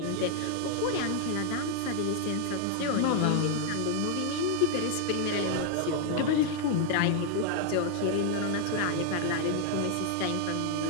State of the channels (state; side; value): different; both; correlation 0.00